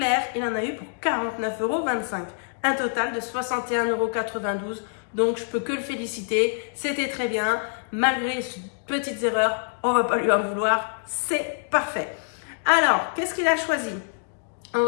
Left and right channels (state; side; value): silent; right; 61 dB below the other